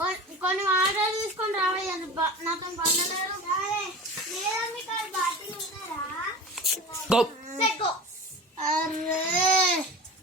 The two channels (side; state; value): both; normal; correlation 0.34